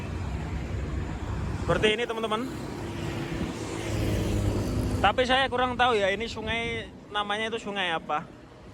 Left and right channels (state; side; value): identical; both; correlation 1.00